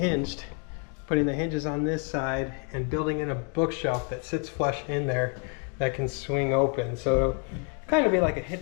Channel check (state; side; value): quieter; right; 39.6 dB